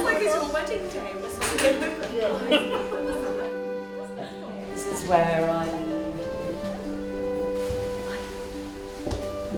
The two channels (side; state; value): both; identical; correlation 1.00